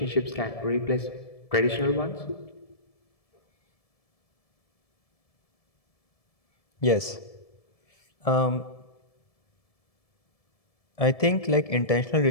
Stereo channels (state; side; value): late; right; 1.7 ms